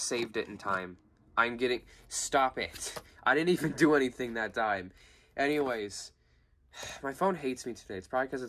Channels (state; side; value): identical; both; correlation 1.00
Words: it in time. I'm getting... Stop it. I didn't even do anything that time. Anyways, my phone hates me today. It's probably because